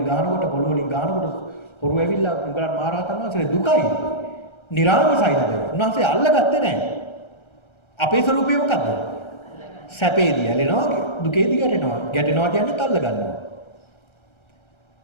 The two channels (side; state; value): right; late; 1.3 ms